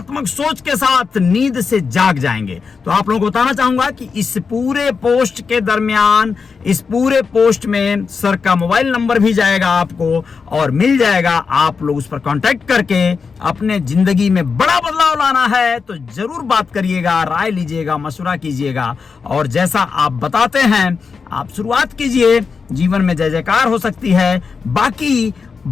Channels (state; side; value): quieter; right; 5.3 dB